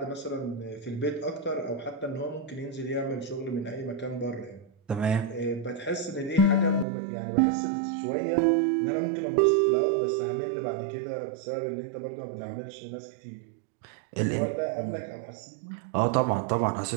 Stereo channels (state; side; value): drops out; left; at 6.9 s